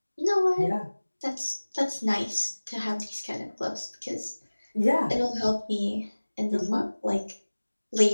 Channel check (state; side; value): inverted; both; correlation -1.00